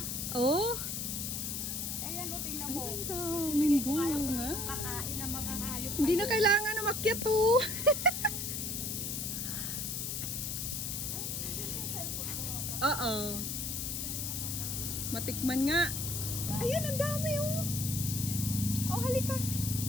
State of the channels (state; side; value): noise; left; hiss, 3 dB below the sound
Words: Oh, Ayan o, tingnan mo. ang daming bunga. Kakain ng mga hayop. Hindi na kailangan na makyat oh. Oo. Matikman nga. Ayan, ang dami oh. Oh, halika.